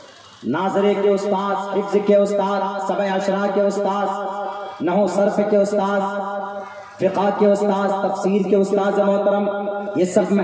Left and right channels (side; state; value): both; identical; correlation 1.00